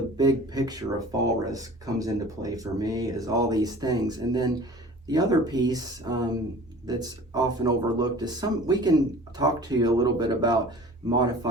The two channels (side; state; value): both; normal; correlation 0.44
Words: big picture of fall risk comes into play for me, is all these things. And then the other piece that's often overlooked is we can talk to you a little bit about